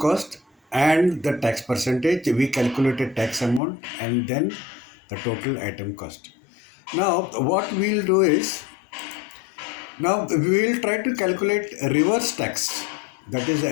and the tax percentage, we calculated tax amount and then the total item cost. Now, what we'll do is now we will try to calculate reverse tax, that is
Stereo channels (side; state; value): right; drops out; at 3.6 s